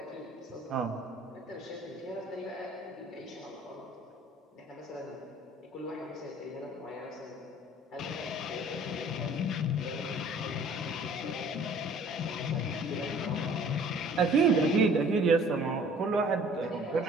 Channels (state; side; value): normal; both; correlation 0.52